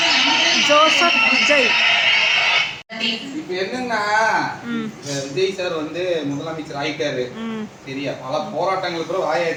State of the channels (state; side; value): identical; both; correlation 1.00